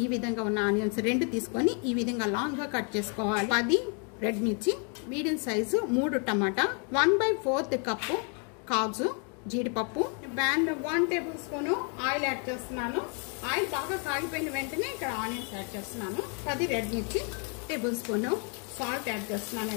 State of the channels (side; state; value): right; quieter; 38.6 dB